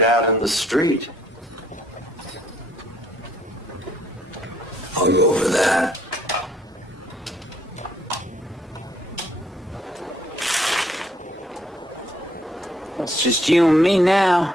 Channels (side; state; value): both; normal; correlation 0.66